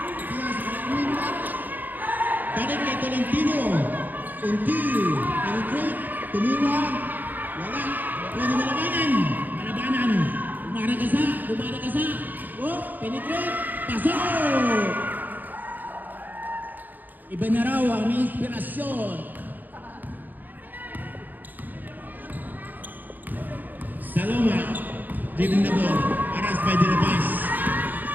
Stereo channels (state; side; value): late; left; 0.085 ms